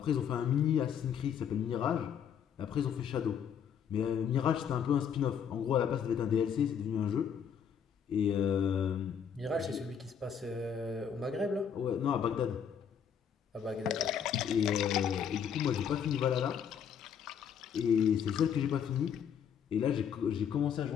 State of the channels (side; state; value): right; quieter; 7.8 dB